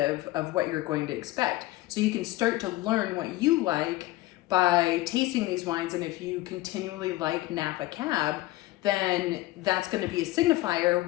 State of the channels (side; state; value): right; quieter; 17.9 dB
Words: of what you're going to expect. So you can start to learn what you like by tasting these wines, and if you continually like Napa Cab, then that's going to be a signifier